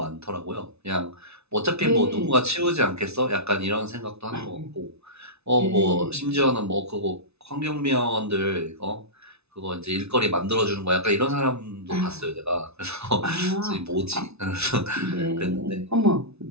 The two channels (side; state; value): left; late; 0.80 ms